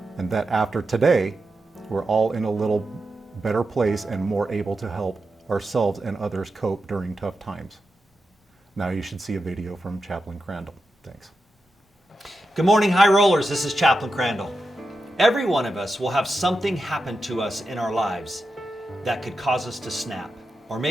and that after today, we're all in a little better place and more able to help ourselves and others cope during tough times. Now you should see a video from Chaplain Crandell. Thanks. Good morning, high rollers. This is Chaplain Crandell. Every one of us will have something happen to us in our lives that could cause us to snap, or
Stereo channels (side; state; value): both; normal; correlation 0.89